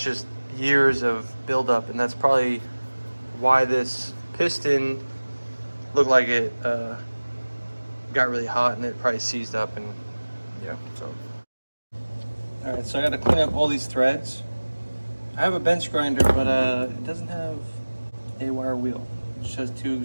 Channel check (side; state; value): both; inverted; correlation -1.00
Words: just years of buildup, and that's probably why this piston looked like it got really hot and it probably seized up. And yeah, so all right, so I got to clean up all these threads. I have a bench grinder, but it doesn't have a wire wheel. It just has 2